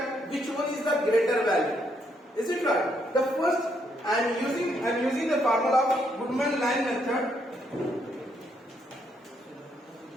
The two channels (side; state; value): both; normal; correlation 0.74